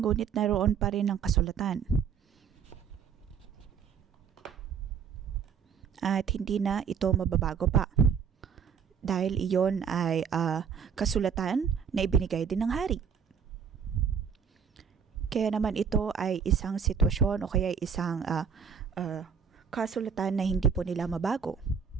ngunit naroon pa rin ang kasulatan. At hindi na ito mababago pa. Dahil iyon ay kasulatan na ibinigay din ng hari. Kaya naman ito ay isang sitwasyon o kaya isang kasulatan na hindi po nila mabago.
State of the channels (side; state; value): left; quieter; 6.9 dB